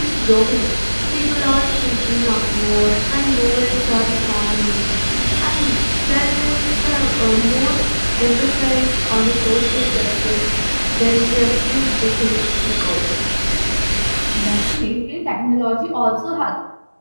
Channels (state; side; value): inverted; both; correlation -1.00